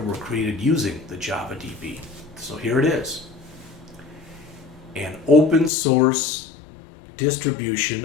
were created using the Java DB. So here it is. An open source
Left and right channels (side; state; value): right; drops out; at 5.7 s